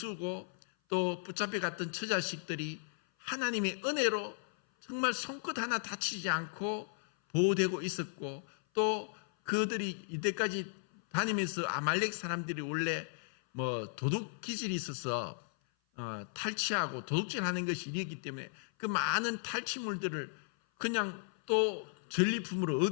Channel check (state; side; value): silent; right; 54 dB below the other